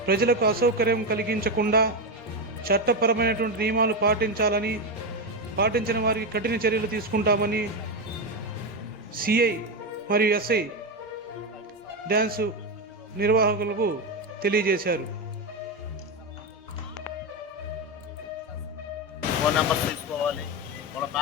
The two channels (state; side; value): normal; both; correlation 0.11